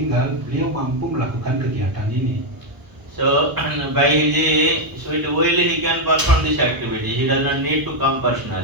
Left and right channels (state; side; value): late; left; 1.0 ms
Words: beliau mampu melakukan kegiatan ini. So by his sweet will he can perform this activity. He does not need to come